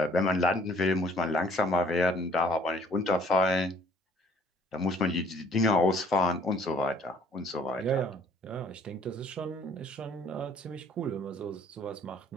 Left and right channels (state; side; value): normal; both; correlation 0.58